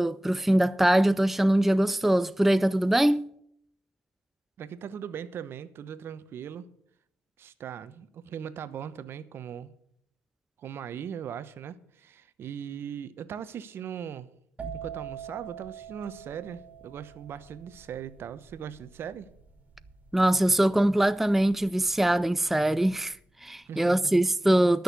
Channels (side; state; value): both; normal; correlation 0.96